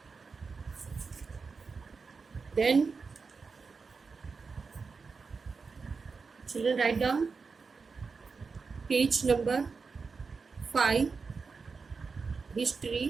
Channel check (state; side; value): quieter; left; 4.8 dB